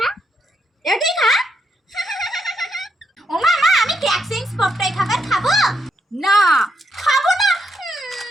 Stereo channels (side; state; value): both; normal; correlation 0.79